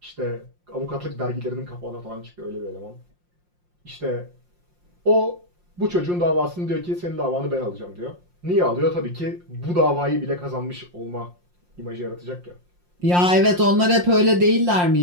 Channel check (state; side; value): late; left; 5.6 ms